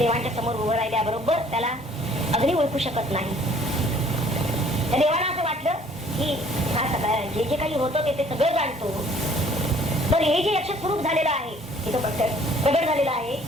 समोर उभं राहिल्याबरोबर त्याला अग्नी ओळखू शकत नाही. त्या देवाला असं वाटलं की हा सगळं जे जे काही होतं ते सगळं जाणतो, तर हे जे यक्ष स्वरूप झालेलं आहे, तिथं प्रगट झालेलं आहे,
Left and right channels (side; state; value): both; normal; correlation 0.57